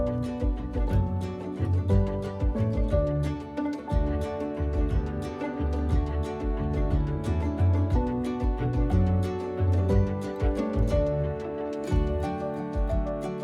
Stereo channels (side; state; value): both; identical; correlation 1.00